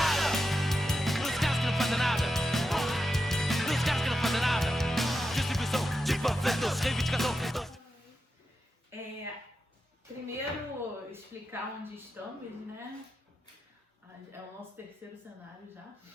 Nos caras que não fazem nada! Nos caras que não fazem nada! Distribuição de panfletos, reivindicação. Primeiro explicar onde estamos, né? É o nosso terceiro cenário já.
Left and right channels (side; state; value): both; normal; correlation 0.89